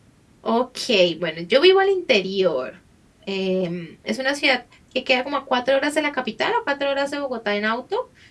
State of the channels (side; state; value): both; identical; correlation 1.00